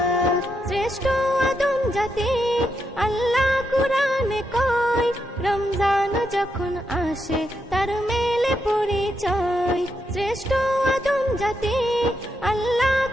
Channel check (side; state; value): both; normal; correlation 0.82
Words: শ্রেষ্ঠ আদম জাতি আল্লাহ কুরআনে কয়, রমজান যখন আসে তার মেলে পরিচয়। শ্রেষ্ঠ আদম জাতি আল্লাহ